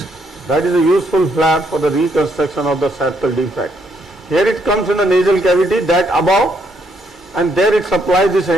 That is a useful flap for the reconstruction of the septal defect. Here it comes in the nasal cavity, that above, and there it supplies this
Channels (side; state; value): both; normal; correlation 0.73